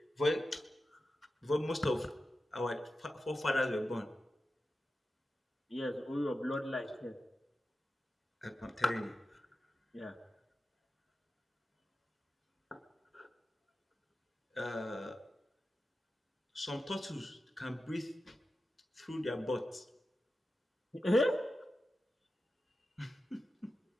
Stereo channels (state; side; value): normal; both; correlation 0.92